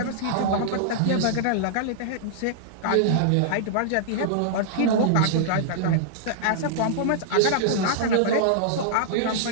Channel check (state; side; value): different; both; correlation -0.02